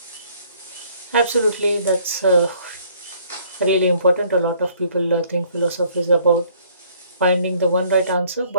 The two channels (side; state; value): both; inverted; correlation -0.60